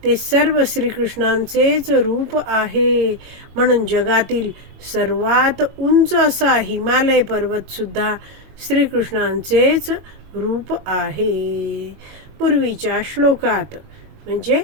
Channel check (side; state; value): left; late; 22 ms